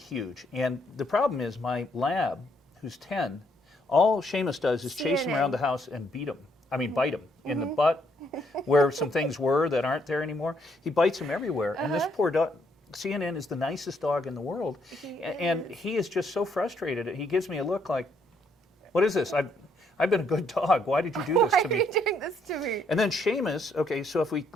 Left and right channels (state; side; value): normal; both; correlation 0.71